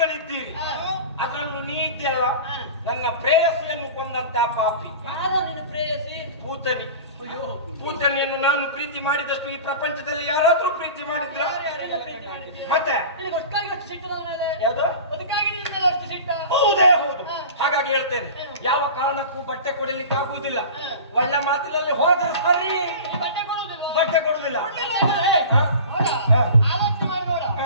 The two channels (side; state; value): both; inverted; correlation -0.36